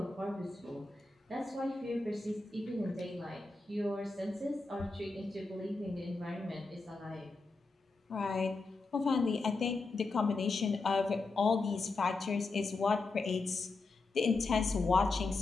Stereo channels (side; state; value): right; quieter; 3.6 dB